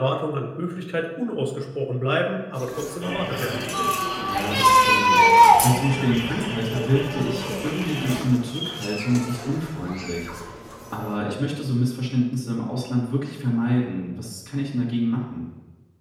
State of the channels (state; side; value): identical; both; correlation 1.00